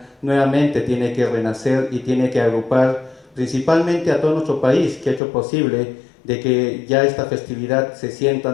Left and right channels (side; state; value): right; drops out; at 5.2 s